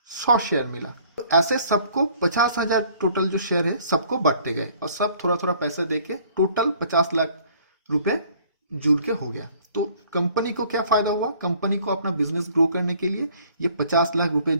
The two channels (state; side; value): inverted; both; correlation -0.57